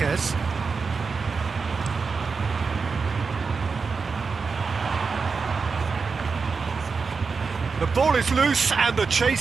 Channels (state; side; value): quieter; left; 4.9 dB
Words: The ball is loose and the